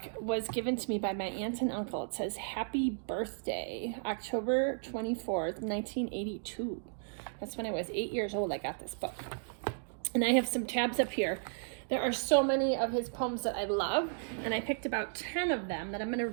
was given to me by my aunt and uncle. It says, Happy Birthday, October 24th, 1982. That's when I was 8 years old I got this book. And I have some tabs up here. There are so many of his poems that I love, and I picked about 10 of them that I'm going to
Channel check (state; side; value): silent; left; digital silence